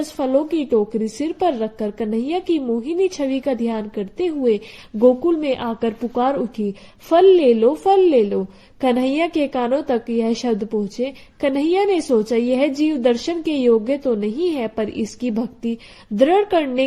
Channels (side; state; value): both; identical; correlation 1.00